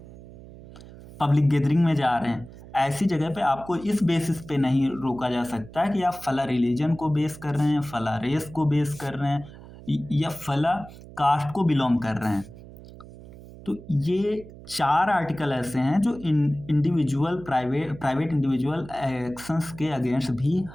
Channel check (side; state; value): right; noise; hum, 17 dB below the sound